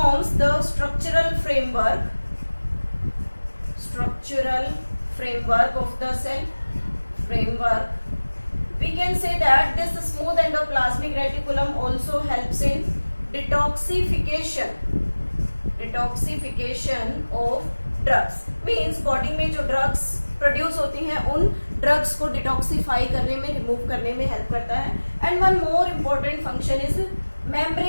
the structural framework of the cell. We can say that this smooth endoplasmic reticulum also helps in detoxification of drugs. Means body में जो drugs produce होती हैं उन drugs को detoxify करने में, remove करने में हेल्प करता है. And one more important function is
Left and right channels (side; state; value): both; inverted; correlation -1.00